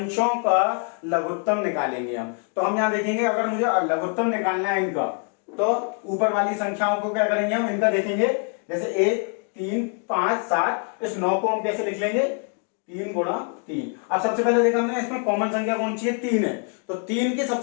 का लघुत्तम निकालेंगे हम। तो हम यहाँ देखेंगे अगर मुझे लघुत्तम निकालना है इनका, तो ऊपर वाली संख्याओं को क्या करेंगे हम, इनका देखेंगे, जैसे 1, 3, 5, 7, इस 9 को हम कैसे लिख लेंगे, 3 गुणा 3। अब सबसे पहले देखा हमने इसमें कॉमन संख्या कौन सी है, 3 है, तो 3 की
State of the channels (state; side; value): quieter; right; 39.5 dB